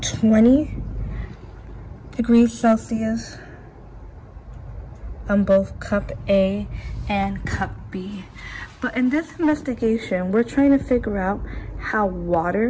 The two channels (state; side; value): identical; both; correlation 1.00